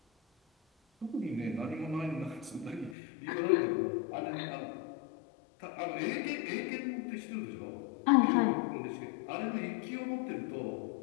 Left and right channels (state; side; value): drops out; right; at 3.0 s